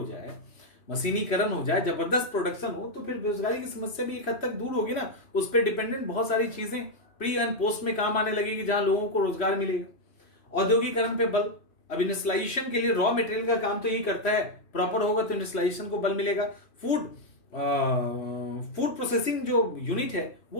जाए, मशीनीकरण हो जाए, जबरदस्त प्रोडक्शन हो, तो फिर बेरोजगारी की समस्या भी एक हद तक दूर होगी ना। उस पर डिपेंडेंट बहुत सारी चीजें प्री एंड पोस्ट में काम आने लगेगी, जहां लोगों को रोजगार मिलेगा। औद्योगिकरण पे बल। अब इंडस्ट्रियलाइजेशन के लिए रॉ मटेरियल का काम तो यही करता है, प्रॉपर होगा तो इंडस्ट्रियलाइजेशन को बल मिलेगा। फूड प्रोसेसिंग जो यूनिट है वो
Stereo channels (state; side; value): late; right; 3.1 ms